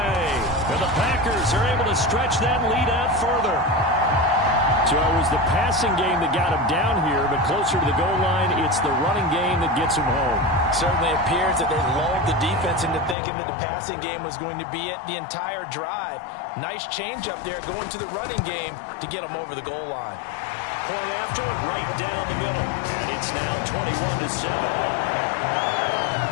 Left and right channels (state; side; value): drops out; right; at 13.2 s